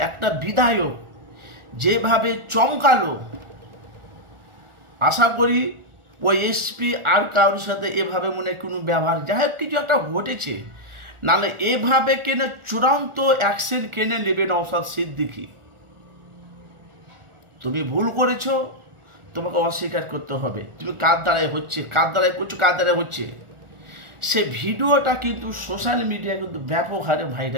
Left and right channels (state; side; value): late; left; 1.4 ms